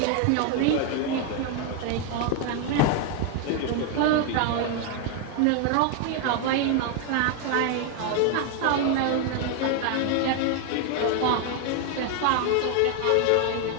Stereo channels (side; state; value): both; different; correlation 0.01